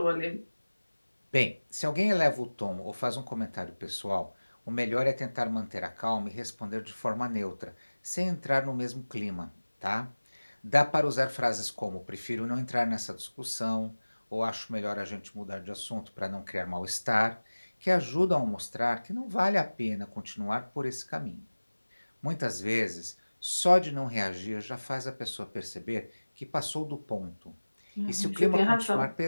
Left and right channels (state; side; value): inverted; both; correlation -1.00